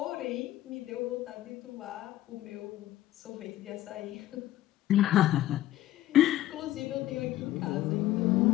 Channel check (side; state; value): right; quieter; 14.1 dB